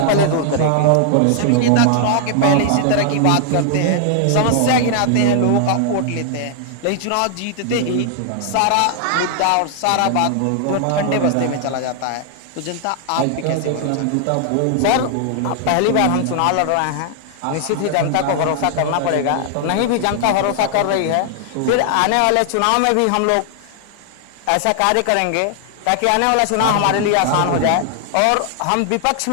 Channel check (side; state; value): both; different; correlation 0.00